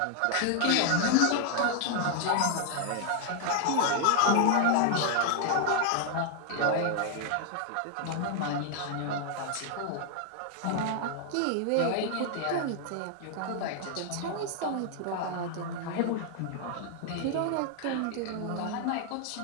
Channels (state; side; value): different; both; correlation 0.00